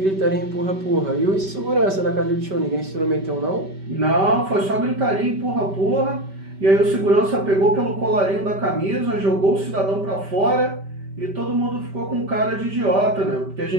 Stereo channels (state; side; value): late; left; 5.2 ms